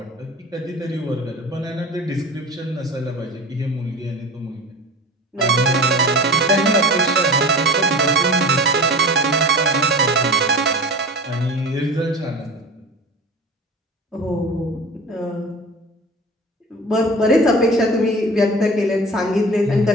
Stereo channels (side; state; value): both; normal; correlation 0.36